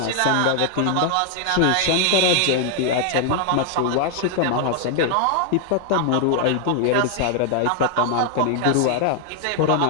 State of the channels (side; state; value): both; different; correlation 0.00